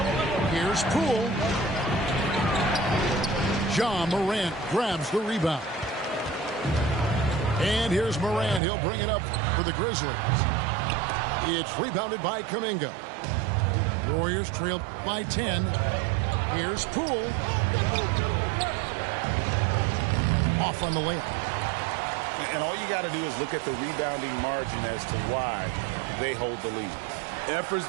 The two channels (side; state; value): left; drops out; at 8.6 s